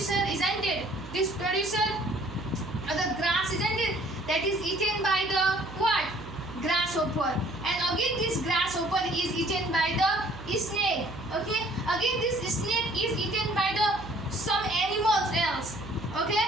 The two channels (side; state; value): right; noise; hum, 14 dB below the sound